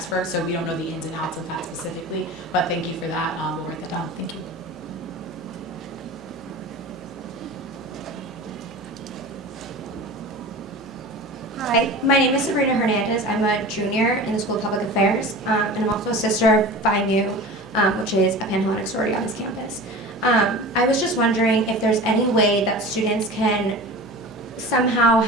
so we don't know the ins and outs of that specifically, but thank you for that. We'll write that down. Thank you. Hi, my name is Sabrina Hernandez. I'm a junior in the School of Public Affairs, and I'm also a sister of Phi Mu, which is a Panhellenic sorority on this campus. I was just wondering if there's any way that students can somehow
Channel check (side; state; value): both; normal; correlation 0.35